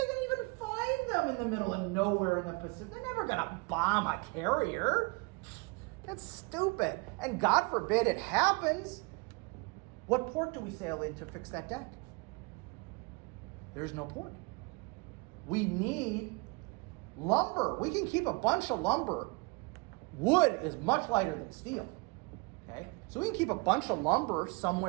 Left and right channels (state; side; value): quieter; left; 29.0 dB